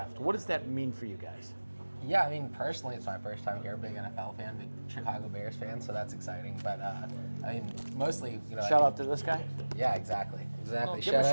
What does that mean for you guys? Yeah, I mean, personally, it's my first time here. Big NFL fan, big Chicago Bears fan, so that's exciting. But I mean, mostly, you know. Shout out to this guy. Yeah, exactly. Well, give him a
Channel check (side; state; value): both; inverted; correlation -1.00